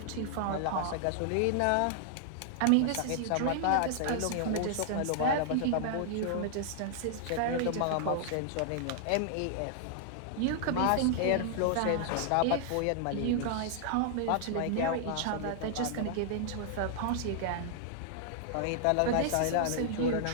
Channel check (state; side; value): different; both; correlation -0.01